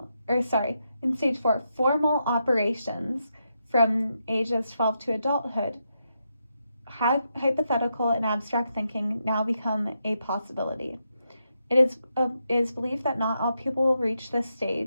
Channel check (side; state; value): both; inverted; correlation -0.83